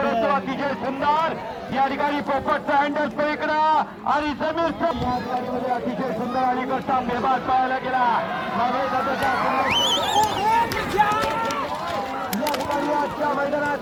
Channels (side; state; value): both; identical; correlation 1.00